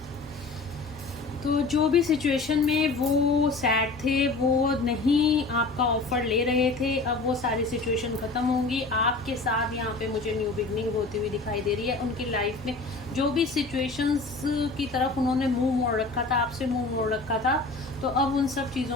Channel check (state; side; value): quieter; right; 3.6 dB